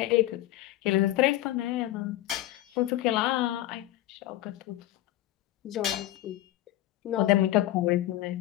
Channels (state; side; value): quieter; right; 15.1 dB